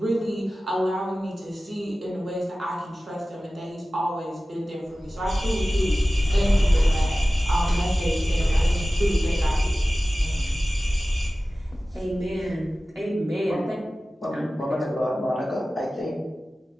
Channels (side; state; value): both; normal; correlation 0.96